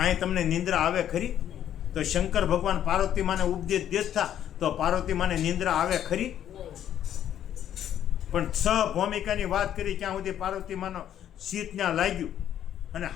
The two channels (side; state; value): right; quieter; 10.6 dB